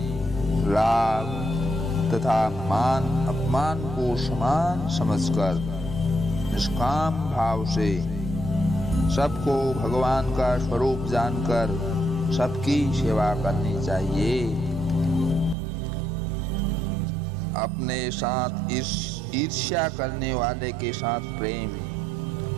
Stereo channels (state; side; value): drops out; left; at 15.6 s